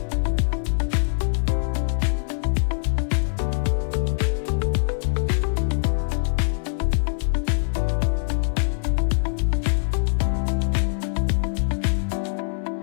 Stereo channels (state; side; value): silent; right; digital silence